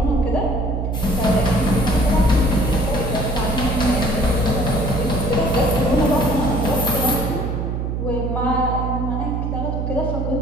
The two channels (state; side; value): noise; right; hum, 2 dB below the sound